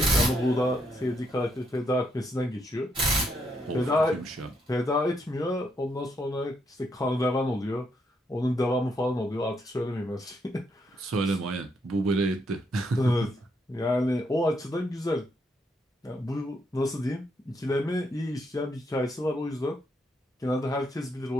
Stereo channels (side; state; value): both; normal; correlation 0.77